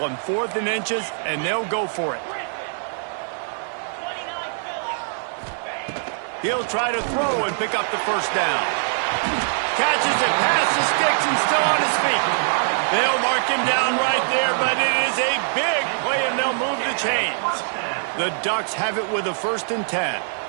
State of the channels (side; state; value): left; silent; 63 dB below the other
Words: 4th and inches, and they'll go for it. He'll try to throw and pick up the first down. Catches it past the sticks and still on his feet. They'll mark him down right there, but it is a big play, and they'll move the chains. The Ducks have it with a 1st and 10.